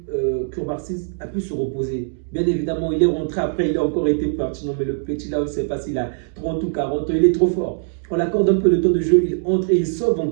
Cubarsí a pu se reposer. Bien évidemment, il est rentré après, il a encore été pertinent, mais le petit là, on ne sait pas s'il a 30 ou 40 ans, il est trop fort. On l'accorde un peu de temps de jeu, il entre et il sauve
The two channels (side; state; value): left; silent; digital silence